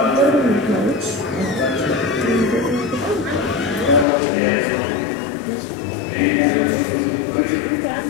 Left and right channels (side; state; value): right; drops out; at 4.0 s